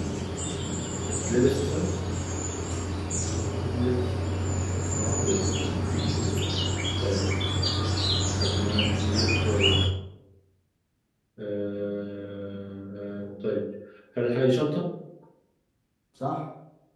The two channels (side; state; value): both; identical; correlation 1.00